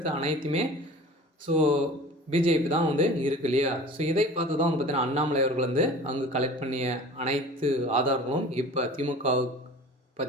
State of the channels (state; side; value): normal; both; correlation 0.41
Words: அனைத்துமே பிஜேபி தான் இருக்கு இல்லையா. இதை பார்த்து தான் பார்த்தீங்கன்னா அண்ணாமலை அவர்கள் அங்கே கலெக்ட் பண்ணிய அனைத்து ஆதாரங்களும் இப்போ திமுகவுக்கு